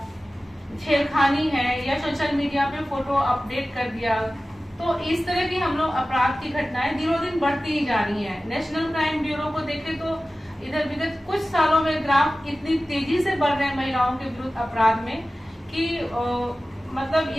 छेड़खानी है, या सोशल मीडिया पे फोटो अपडेट कर दिया। तो इस तरह की हम लोग अपराध की घटनाएं दिनों दिन बढ़ती ही जा रही हैं। नेशनल क्राइम ब्यूरो को देखें तो इधर विगत कुछ सालों में ग्राफ इतनी तेजी से बढ़ रहे हैं महिलाओं के विरुद्ध अपराध में कि मतलब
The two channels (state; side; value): normal; both; correlation 0.96